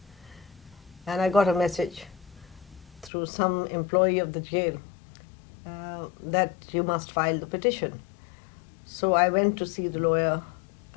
and I got a message through some employee of the jail that you must file the petition. So I went to see the lawyer,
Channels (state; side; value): drops out; right; at 3.1 s